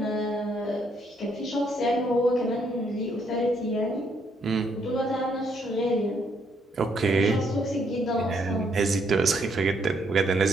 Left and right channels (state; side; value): normal; both; correlation 0.72